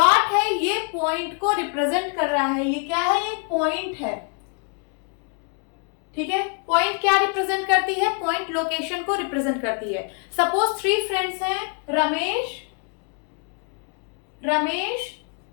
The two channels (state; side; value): quieter; right; 38.4 dB